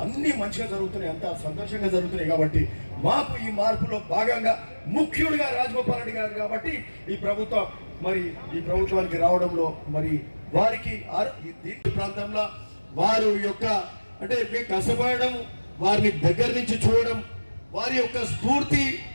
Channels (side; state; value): both; inverted; correlation -1.00